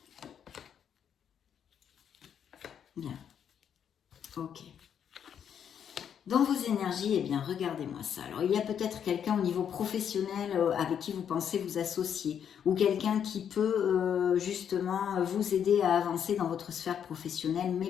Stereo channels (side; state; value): right; quieter; 8.4 dB